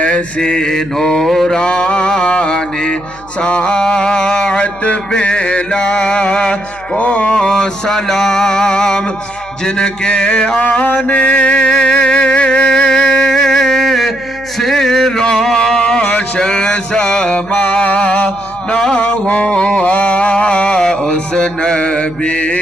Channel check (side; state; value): left; noise; hum, 23 dB below the sound